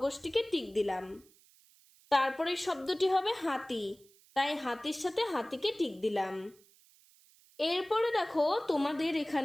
টিক দিলাম। তারপরের শব্দটি হবে হাতি, তাই হাতির সাথে হাতিকে টিক দিলাম। এরপরে দেখো তোমাদের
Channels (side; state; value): right; noise; hiss, 28 dB below the sound